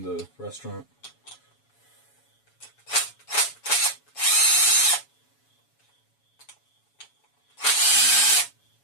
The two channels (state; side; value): late; right; 7.1 ms